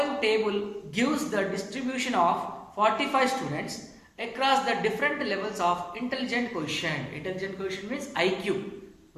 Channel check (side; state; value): both; identical; correlation 1.00